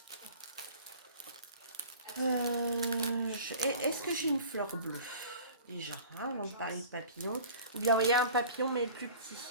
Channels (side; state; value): both; inverted; correlation -0.44